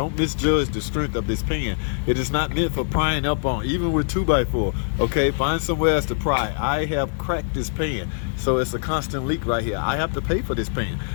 misjudge the strength of this pan. It is not meant for prying up on, even with 2x4. Okay, find somewhere else to pry. I have cracked this pan, so it's a constant leak right here. I have to pay for this pan.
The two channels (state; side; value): silent; right; 63 dB below the other